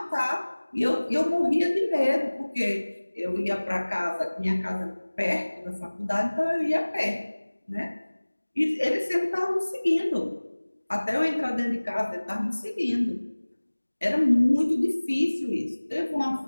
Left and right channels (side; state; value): both; inverted; correlation -1.00